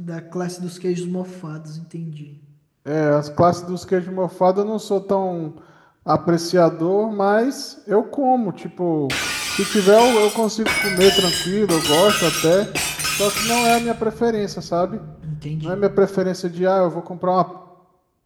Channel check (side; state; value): both; identical; correlation 1.00